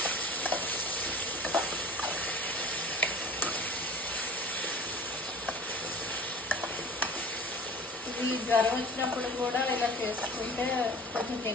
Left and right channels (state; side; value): normal; both; correlation 0.43